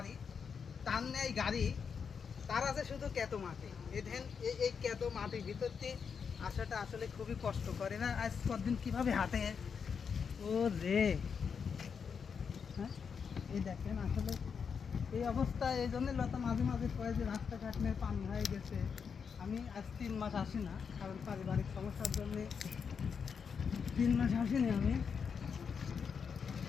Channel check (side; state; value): right; quieter; 6.3 dB